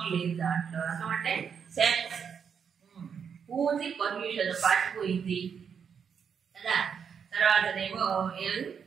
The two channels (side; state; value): left; quieter; 7.0 dB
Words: లేదు దాంట్లో. రసం అంటే పూర్తి పొల్యూషన్ పాటిపోయింది కదా. తర్వాతనేమో